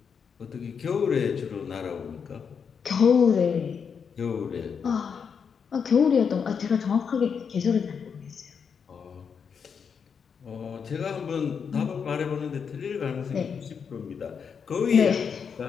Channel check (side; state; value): right; quieter; 6.5 dB